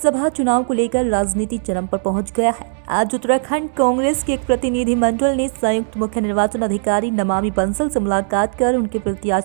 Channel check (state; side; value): silent; left; 67 dB below the other